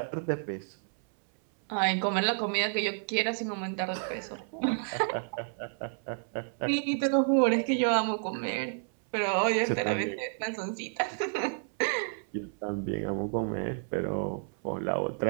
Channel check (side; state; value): left; silent; 57 dB below the other